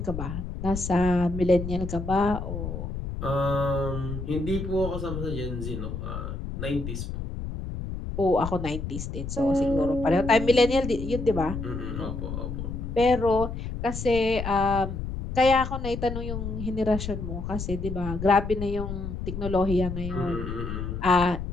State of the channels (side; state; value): left; noise; rumble, 6 dB below the sound